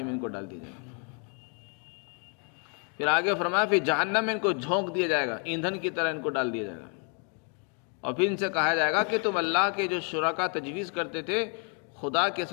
میں ان کو ڈال دیا جائے گا. پھر آگے فرمایا پھر جہنم میں ان کو جھونک دیا جائے گا، ایندھن کی طرح ان کو ڈال دیا جائے گا. اور پھر ان سے کہا جائے گا کہ تم اللہ کے جو شرکا تجویز کرتے تھے، خدا کے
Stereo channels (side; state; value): right; quieter; 39.9 dB